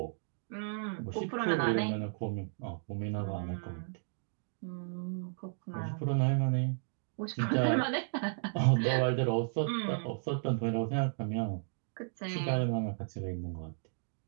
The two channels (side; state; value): left; silent; digital silence